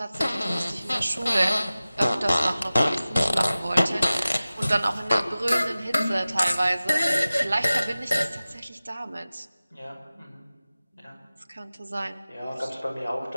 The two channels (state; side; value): inverted; both; correlation -0.97